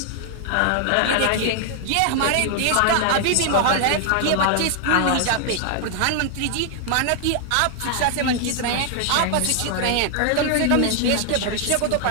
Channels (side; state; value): both; different; correlation 0.00